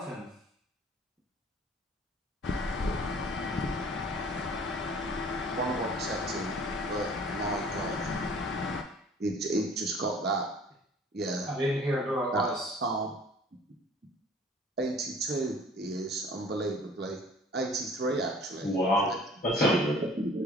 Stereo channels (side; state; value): both; normal; correlation 0.50